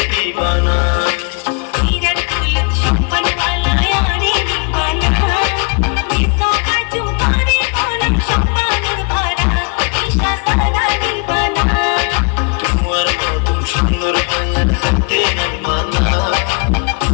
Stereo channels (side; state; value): right; quieter; 37.6 dB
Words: দিবানা হিরার ফুল সম্মান वाला यारे दीवाना देखो परचूम करे होलो সম্মানুর ভরা উইশা সারা दीवाना তোমার মতন সুন্দর মায়ের থাকতে নাই মানা